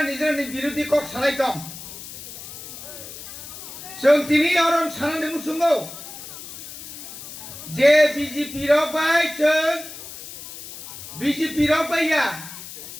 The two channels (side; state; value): left; noise; hiss, 12 dB below the sound